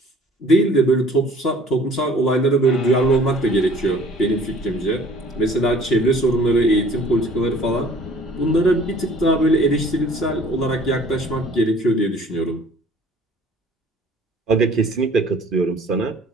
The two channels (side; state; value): both; normal; correlation 0.53